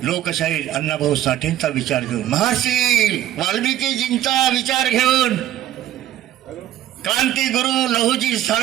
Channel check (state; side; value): quieter; left; 12.5 dB